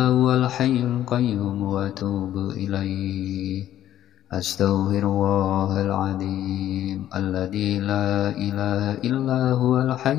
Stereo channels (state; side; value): quieter; right; 12.1 dB